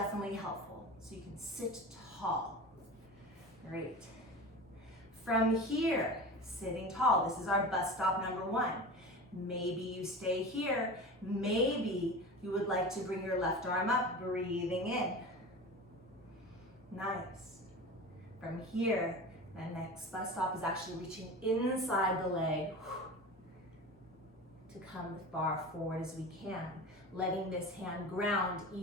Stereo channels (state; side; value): normal; both; correlation 0.32